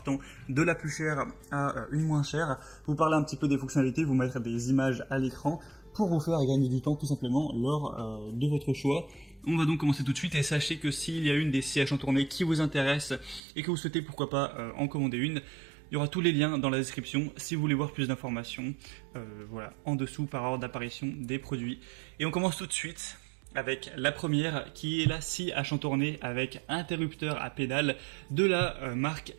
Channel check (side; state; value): left; drops out; at 13.4 s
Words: de la plus chère à une moins chère. Vous parler un petit peu des fonctionnalités, vous mettre des images à l'écran pour vous faire gagner du temps tout simplement lors de votre choix. On va donc commencer tout de suite et sachez que s'il y a une des scies à chantourner qui vous intéresse et que vous souhaitez pourquoi pas en commander une, il y aura tous les liens dans la description si vous voulez voir plus d'informations, voilà, en dessous par ordre d'apparition des produits. Et on commence tout de suite avec la première qui est la scie à chantourner avec interrupteur à pédale de la marque